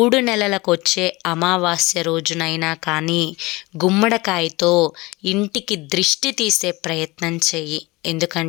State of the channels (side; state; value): right; quieter; 22.6 dB